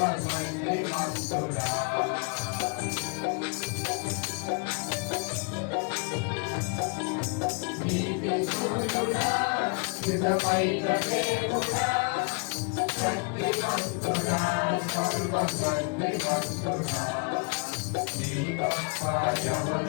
నీతిశూరుడా, నిజమైన దేవుడా, శక్తిమంతుడా, సర్వశక్తిమంతుడా. నీ తప్ప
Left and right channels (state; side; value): quieter; right; 36.1 dB